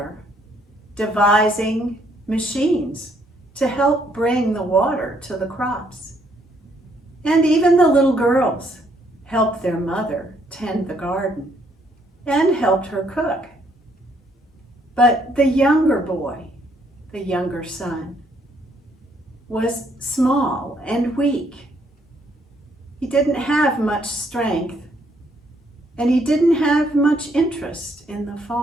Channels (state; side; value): normal; both; correlation 0.69